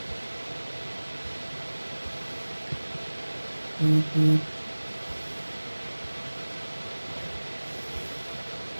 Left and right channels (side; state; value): both; inverted; correlation -1.00